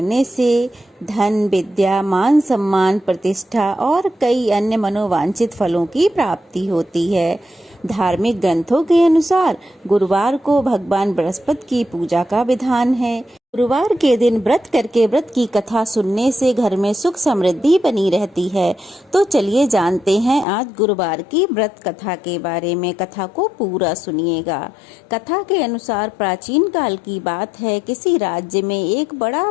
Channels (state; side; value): drops out; right; at 20.5 s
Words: से धन, विद्या, मान सम्मान, प्रतिष्ठा और कई अन्य मनोवांछित फलों की प्राप्ति होती है। धार्मिक ग्रंथों के अनुसार गुरुवार को भगवान बृहस्पति की पूजा का विधान है। गुरुवार के दिन व्रत करके व्रत की कथा सुनने से घर में सुख समृद्धि बनी रहती है। तो चलिए जानते हैं आज गुरुवार की व्रत कथा के बारे में। कथा को पूरा सुनिएगा। कथा के अनुसार प्राचीन काल की बात है। किसी राज्य में एक बड़ा